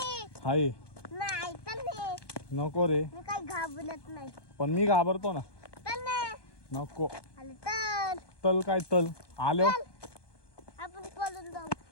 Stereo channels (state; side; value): late; right; 1.2 ms